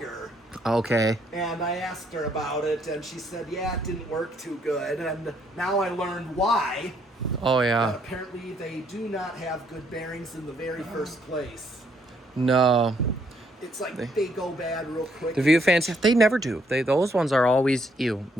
Okay. And I asked her about it, and she said, yeah, it didn't work too good. And now I learned why. Oh That yeah. apparently they do not have good bearings in the very first place. No. It's like they go bad real quick. The view fans, they never do. Those ones are always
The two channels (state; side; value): normal; both; correlation 0.70